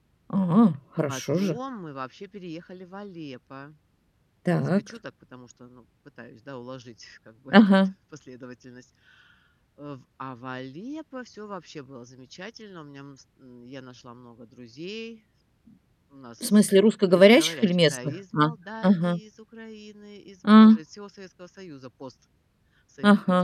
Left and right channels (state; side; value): identical; both; correlation 1.00